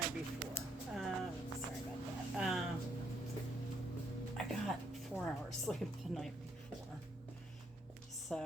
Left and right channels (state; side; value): normal; both; correlation 0.73